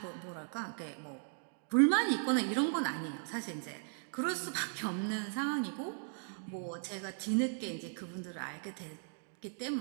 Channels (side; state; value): left; silent; 53 dB below the other